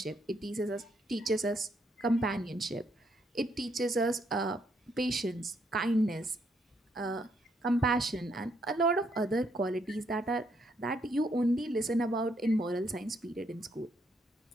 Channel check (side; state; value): both; normal; correlation 0.73